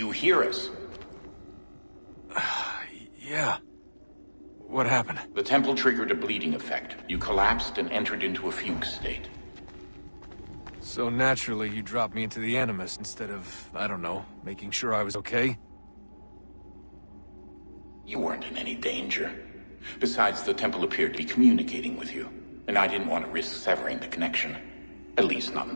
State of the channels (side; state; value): both; inverted; correlation -1.00